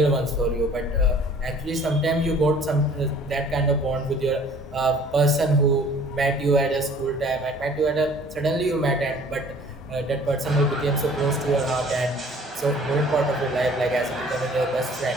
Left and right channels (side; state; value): both; normal; correlation 0.52